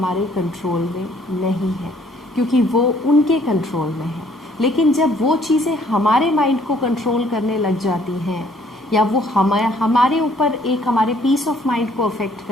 कंट्रोल में नहीं है क्योंकि वो उनके कंट्रोल में है। लेकिन जब वो चीज़ें हमारे माइंड को कंट्रोल करने लग जाती हैं या वो हमारे ऊपर एक हमारे पीस ऑफ माइंड को अफेक्ट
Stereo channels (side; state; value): both; normal; correlation 0.62